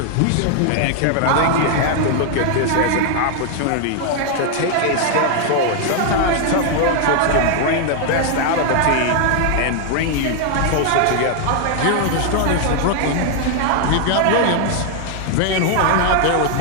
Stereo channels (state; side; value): different; both; correlation 0.00